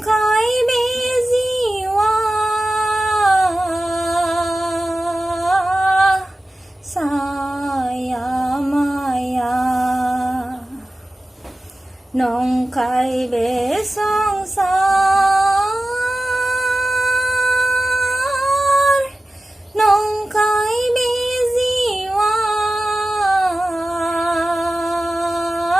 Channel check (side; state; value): both; normal; correlation 0.95